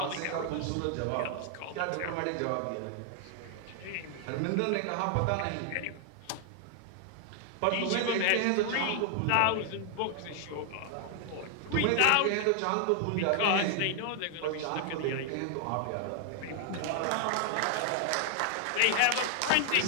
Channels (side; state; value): both; different; correlation 0.00